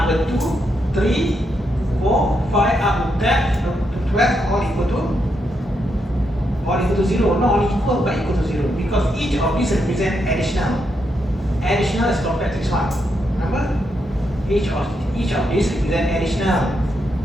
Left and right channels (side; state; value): both; normal; correlation 0.81